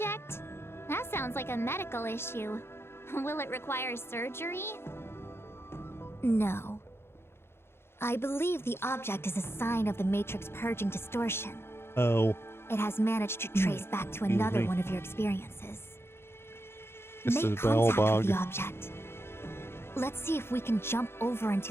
That sounds like a medical issue. Will it require surgery? No. I believe the object is a sign of the Matrix purging distortion. Oh, It has managed to trace back to Excuse another me. one of your experiences. this Make is contact with Bellbog. the object. Let's see if we can jump over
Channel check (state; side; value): late; right; 0.12 ms